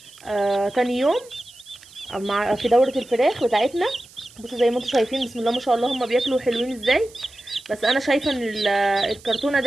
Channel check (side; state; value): right; noise; hiss, 23 dB below the sound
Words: تاني يوم في دورة الفراخ بتاعتنا. بصوا زي ما انتم شايفين، بسم الله ما شاء الله، هما بياكلوا حلوين ازاي. بس انا شايفة ان الكرتونة